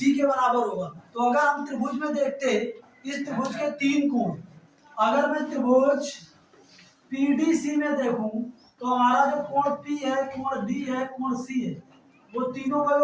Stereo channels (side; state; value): both; identical; correlation 1.00